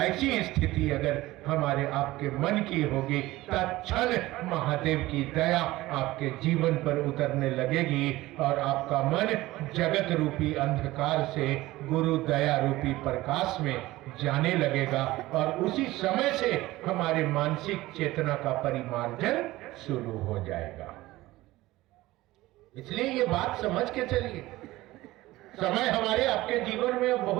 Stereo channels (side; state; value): left; quieter; 18.0 dB